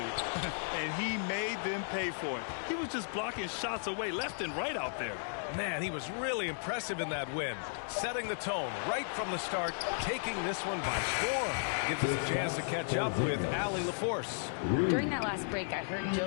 and he made them pay for it. He was just blocking shots away left and right out there. Man, he was really impressive in that win. Setting the tone right from the start, taking this one by storm. Gives us a chance to catch up with Allie LaForce. During that last break, I heard Joe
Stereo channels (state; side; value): silent; right; digital silence